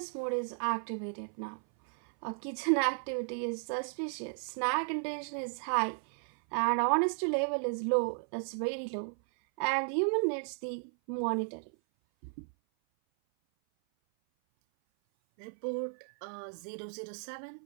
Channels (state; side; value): silent; left; 55 dB below the other